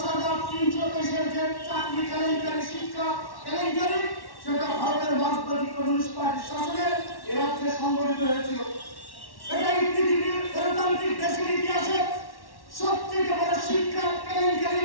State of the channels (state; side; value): late; right; 1.1 ms